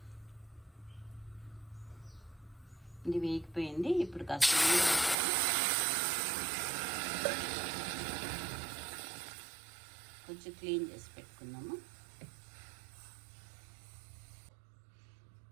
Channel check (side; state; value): left; drops out; at 5.2 s